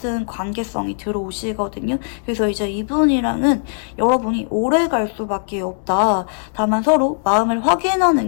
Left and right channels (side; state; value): right; silent; digital silence